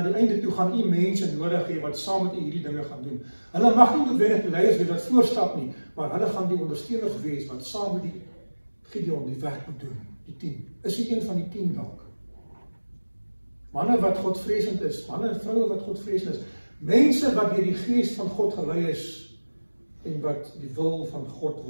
die einde toe gaan u mense nodig hê wat saam met u hierdie dinge gaan doen. Hulle mag nie noodwendig die leiers wees wat voorstap nie, maar hulle gaan die ondersteuners wees wat saam met die Gideon die werk moet doen. Die 10. Is hy een van die 10 dalk? Manne wat Godvreesend is, manne en vroue wat Godvreesend is, mense wat deur die Gees van God gelei is en wat die wil van God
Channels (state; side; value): inverted; both; correlation -1.00